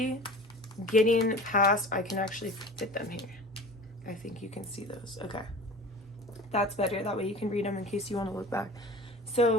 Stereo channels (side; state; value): both; normal; correlation 0.38